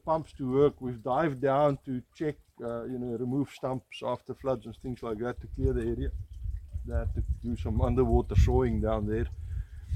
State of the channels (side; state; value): both; identical; correlation 1.00